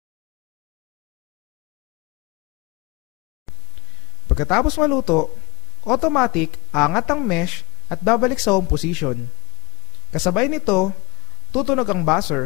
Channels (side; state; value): right; quieter; 25.2 dB